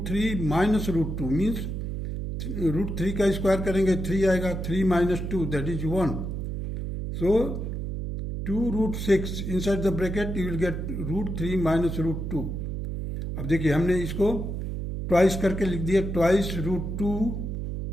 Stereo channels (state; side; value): noise; right; hum, 4 dB below the sound